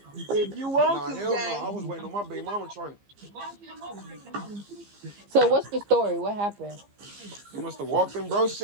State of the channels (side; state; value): left; late; 15 ms